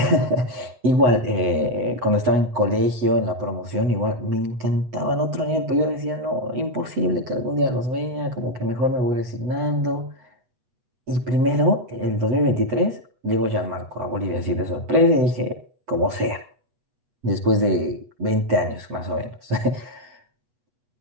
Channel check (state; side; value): late; left; 8.2 ms